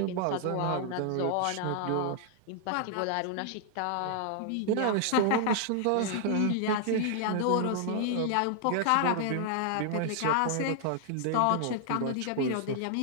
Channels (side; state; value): both; different; correlation 0.00